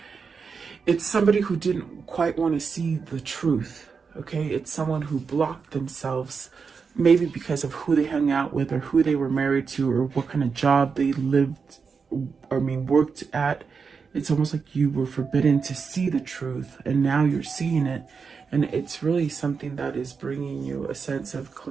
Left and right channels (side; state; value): left; quieter; 5.5 dB